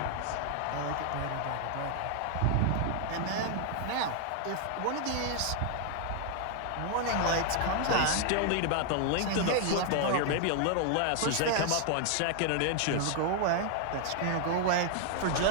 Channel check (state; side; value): different; both; correlation 0.00